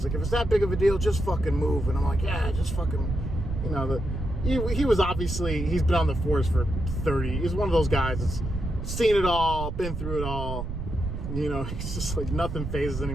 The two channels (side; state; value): right; noise; rumble, 5 dB below the sound